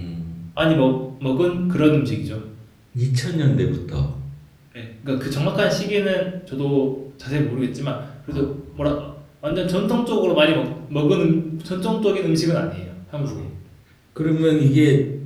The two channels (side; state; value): both; identical; correlation 1.00